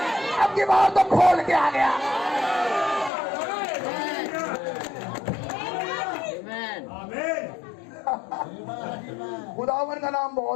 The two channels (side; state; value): right; drops out; at 3.1 s